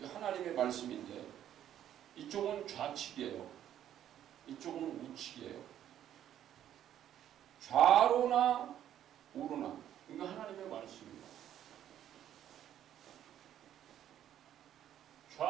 말씀인데 이쪽은 좌측이에요. 이쪽은 우측이에요. 좌로나 우로나 이거 하나님의 말씀입니다.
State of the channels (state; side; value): quieter; left; 10.9 dB